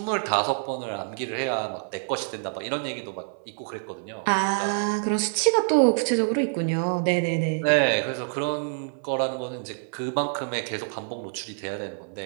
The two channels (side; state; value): left; silent; 56 dB below the other